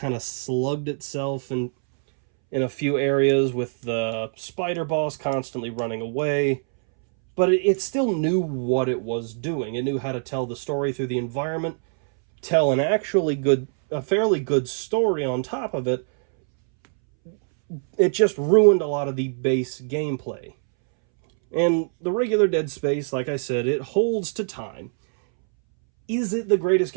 of slugged itself in a few areas with the spider boss constantly running away. But it still knew what it was doing. It knew how to tell the story through the environment, tell a fairly good story on top of it. It just ruined a lot of the base gameplay. And the regular Dead Space, like I said, it holds to time. Is it the greatest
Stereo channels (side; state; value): left; silent; 63 dB below the other